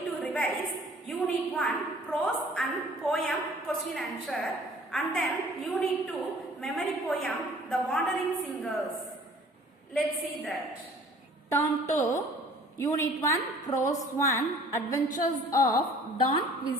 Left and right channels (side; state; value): both; normal; correlation 0.52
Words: to revise Unit 1 Prose and Poem Question Answer and then Unit 2 Memory Poem The Wandering Singers. Let's see that. Turn to Unit 1 Prose 1 Adventures of Don